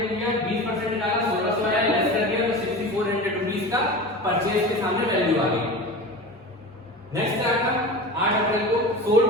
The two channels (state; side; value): normal; both; correlation 0.31